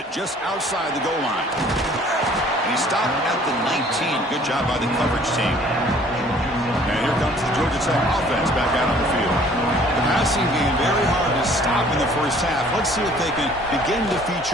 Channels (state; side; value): normal; both; correlation 0.55